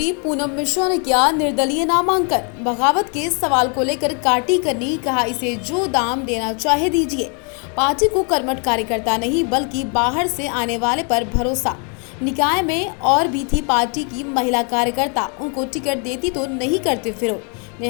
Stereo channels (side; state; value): right; quieter; 37.0 dB